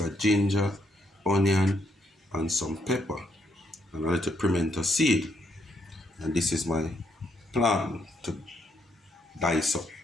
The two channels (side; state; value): both; normal; correlation 0.75